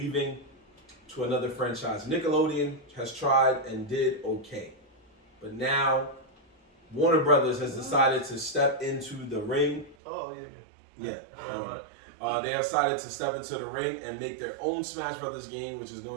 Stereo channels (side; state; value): left; drops out; at 10.0 s